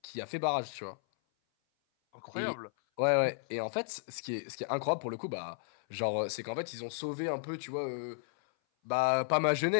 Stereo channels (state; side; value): silent; right; 55 dB below the other